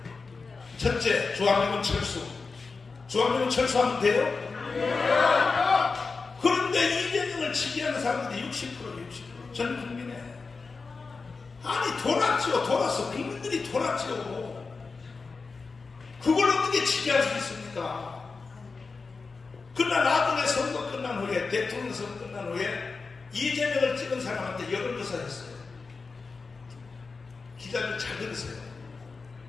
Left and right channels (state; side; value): quieter; right; 4.4 dB